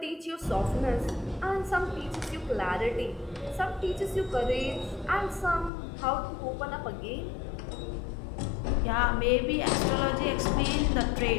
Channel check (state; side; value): drops out; right; at 5.7 s